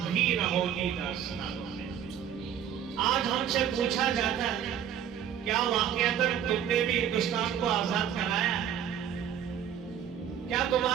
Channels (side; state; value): left; quieter; 9.2 dB